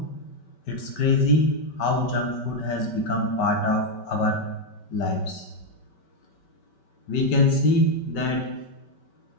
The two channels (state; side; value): late; right; 5.2 ms